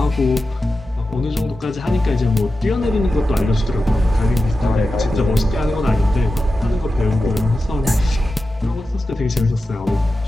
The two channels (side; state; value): both; normal; correlation 0.92